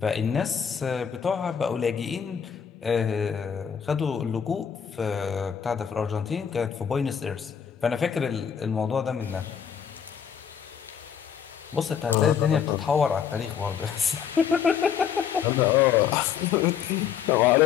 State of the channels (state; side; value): quieter; right; 8.0 dB